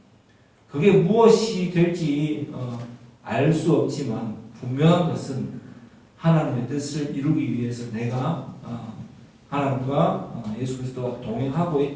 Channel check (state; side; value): identical; both; correlation 1.00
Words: 그게 무엇이 될지 알 수 없지만 분명한 것은 하나님의 뜻을 이루기 위해서 내가 하나님과 예수 그리스도와